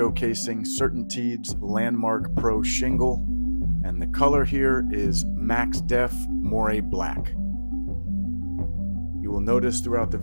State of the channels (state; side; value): inverted; both; correlation -1.00